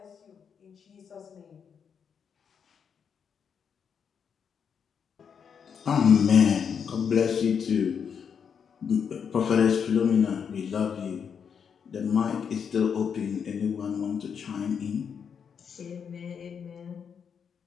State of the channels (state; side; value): quieter; right; 7.0 dB